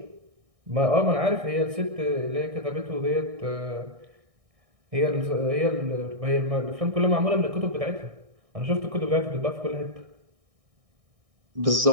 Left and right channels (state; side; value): late; left; 1.6 ms